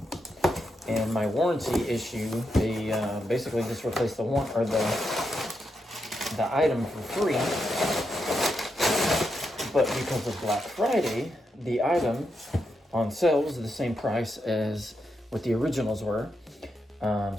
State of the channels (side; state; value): both; normal; correlation 0.84